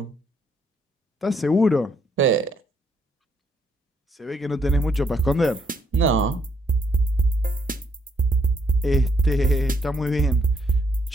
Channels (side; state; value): both; normal; correlation 0.72